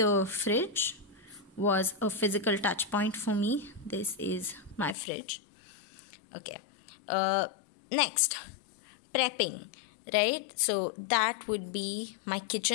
fridge was a physical touch point for me. This is my fridge. Okay. Next, prepping, right? So that would be my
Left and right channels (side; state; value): right; drops out; at 5.0 s